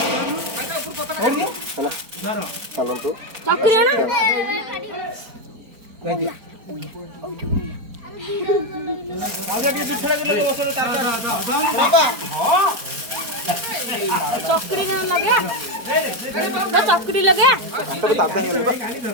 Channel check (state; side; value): late; left; 4.4 ms